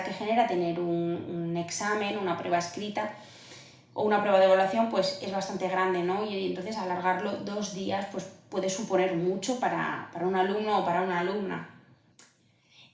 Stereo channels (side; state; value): both; identical; correlation 1.00